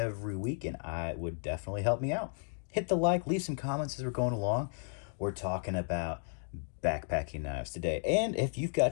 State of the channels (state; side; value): silent; right; digital silence